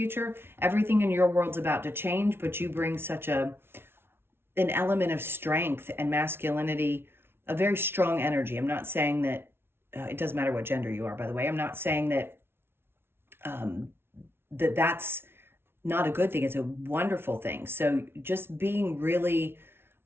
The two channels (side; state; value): left; late; 0.12 ms